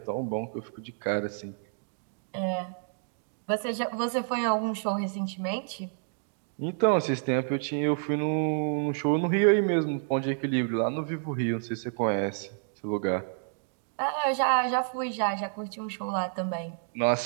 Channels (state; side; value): silent; left; digital silence